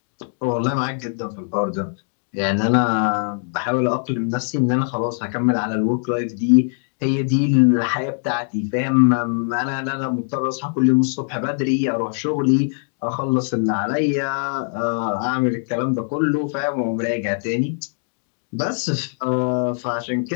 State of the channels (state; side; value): silent; right; 65 dB below the other